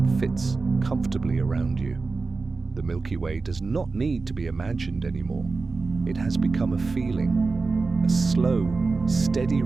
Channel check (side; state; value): left; quieter; 4.0 dB